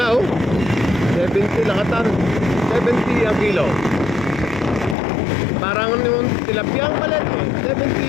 oh. 70 lakatan. 70 ang kilo. Parang yung tilapia ang palit eh.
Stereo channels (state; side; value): drops out; right; at 5.0 s